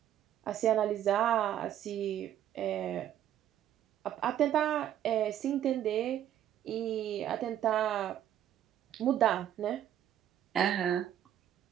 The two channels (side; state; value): left; quieter; 10.9 dB